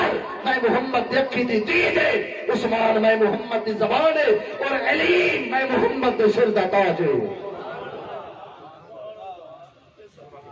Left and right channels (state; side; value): identical; both; correlation 1.00